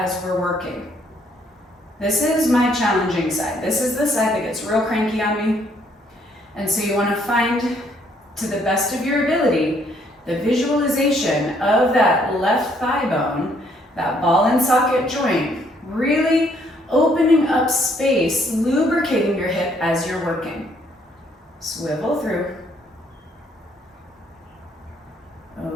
we're working. This is my challenging side. This is the side that gets real cranky on me. And so you wanna find, to the best of your ability, the visualization of that left thigh bone, that ball and socket joint, really opening up space, lubricating your hip as you're working. Swivel through.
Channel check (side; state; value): both; normal; correlation 0.67